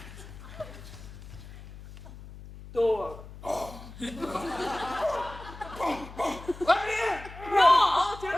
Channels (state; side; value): noise; left; hum, 15 dB below the sound